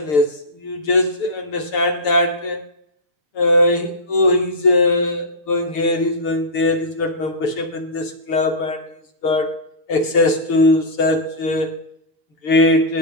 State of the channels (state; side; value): late; right; 6.7 ms